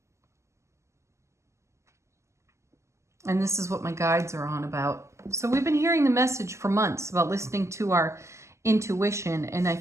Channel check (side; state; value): left; late; 0.13 ms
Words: And this is what my guides are on about. So we've been hearing the message for months about listening to our intuition. And